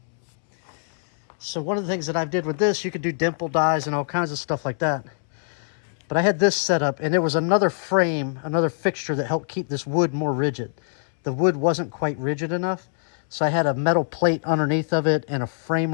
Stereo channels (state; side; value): silent; right; 63 dB below the other